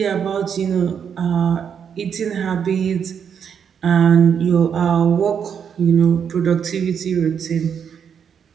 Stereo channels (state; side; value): quieter; left; 7.5 dB